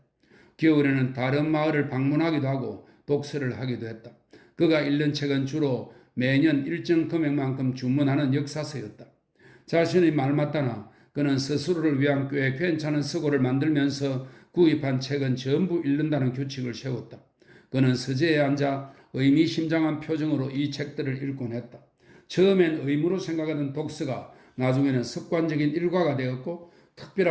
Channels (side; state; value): both; identical; correlation 1.00